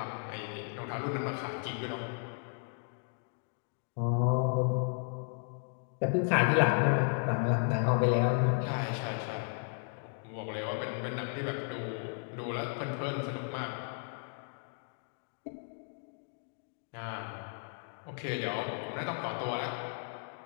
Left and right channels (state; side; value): silent; right; 55 dB below the other